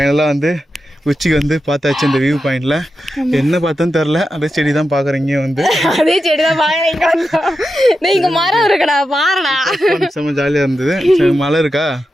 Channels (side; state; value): both; normal; correlation 0.89